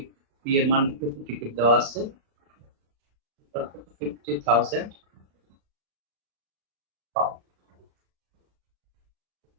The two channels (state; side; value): late; left; 36 ms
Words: পি এর মান 50 টিকিট দেওয়া আছে 50,000 পাউন্ড